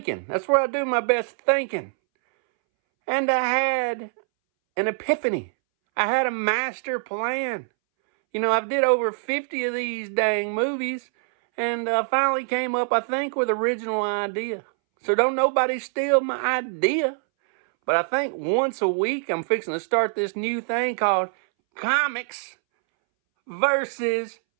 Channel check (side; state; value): left; silent; 63 dB below the other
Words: That's where I do my best thinking. And I had an epiphany. I had a master plan. I did over 50 of these dang movies, and finally came up, I think, with original idea. So don't nobody steal my idea. But I think once a week, I'm fixing to start this new thing called Comics versus